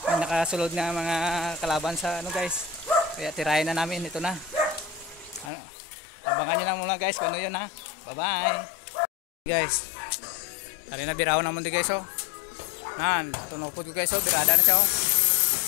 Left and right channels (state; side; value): drops out; right; at 5.5 s